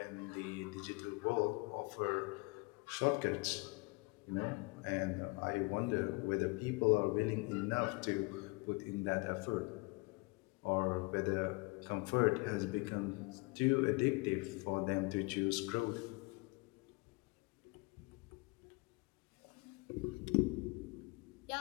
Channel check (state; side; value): quieter; right; 27.9 dB